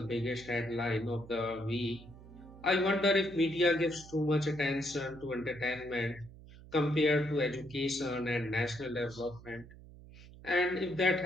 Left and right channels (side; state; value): right; noise; hum, 19 dB below the sound